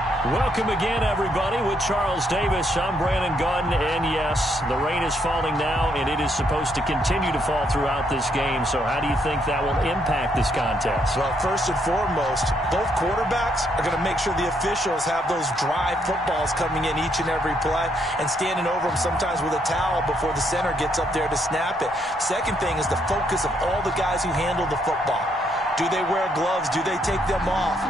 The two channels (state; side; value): normal; both; correlation 0.73